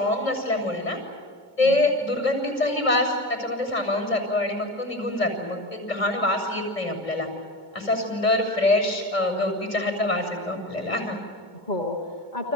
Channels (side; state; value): right; late; 2.2 ms